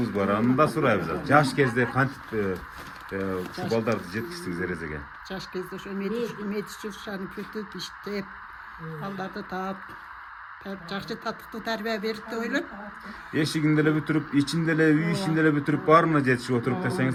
бар. Аны да сурайбыз. Жаш кезде кантип ушу балдарды жеткиздиңиз эрезеге? Жаш кезде ошо медичушаны бүтүп иштеп, балдарды таап, жакшы татыктуу тарбия берип деп ойлойм. Эшигинде эле бүтүрүп, ичинде эле, үй ичинде эле бүтүрүп, баарына жетишип отуруп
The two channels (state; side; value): identical; both; correlation 1.00